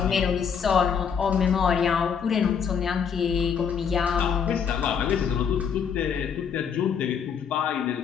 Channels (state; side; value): quieter; right; 7.1 dB